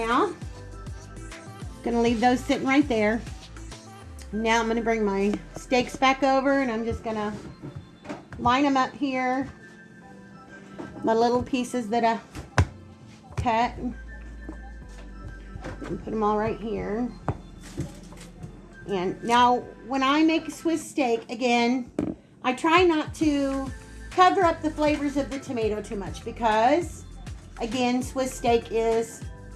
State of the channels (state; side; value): identical; both; correlation 1.00